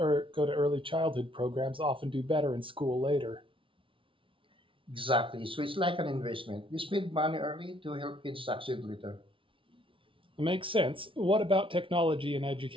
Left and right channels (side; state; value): left; late; 0.25 ms